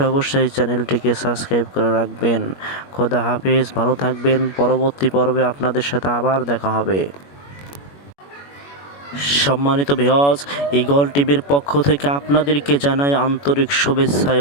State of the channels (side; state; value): right; late; 21 ms